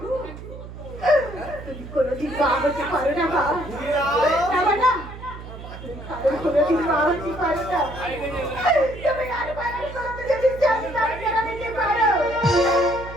তুমি কোনোদিন মা হতে পারো না মা, না কারণ কোনোদিন মা হতে পারো না। তুমি আর বাড়ির কোনো যদি সন্তান কেড়ে নিতে পারো,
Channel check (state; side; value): noise; right; hum, 13 dB below the sound